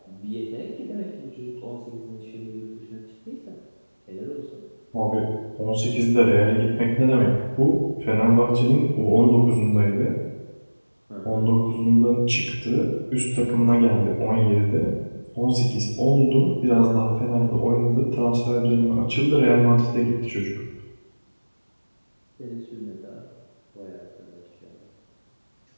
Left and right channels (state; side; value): inverted; both; correlation -1.00